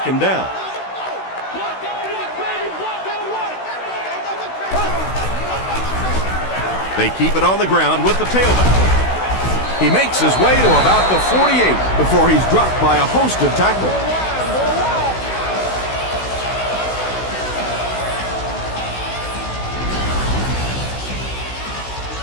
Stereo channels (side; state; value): right; late; 16 ms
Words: down. They keep it on the ground with the tailback. He makes his way to about the 48 before he's dropped by a host of tacklers.